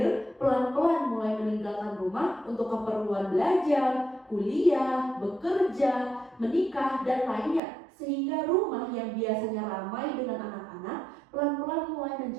pelan-pelan mulai meninggalkan rumah untuk keperluan belajar, kuliah, bekerja, menikah, dan lainnya. Sehingga rumah yang biasanya ramai dengan anak-anak pelan-pelan mulai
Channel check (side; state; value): left; drops out; at 7.6 s